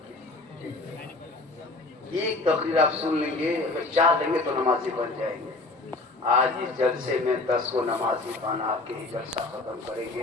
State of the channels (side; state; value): right; quieter; 3.1 dB